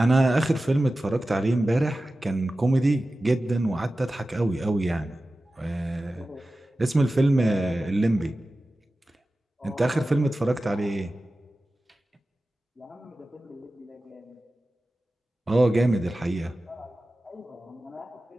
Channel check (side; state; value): both; normal; correlation 0.95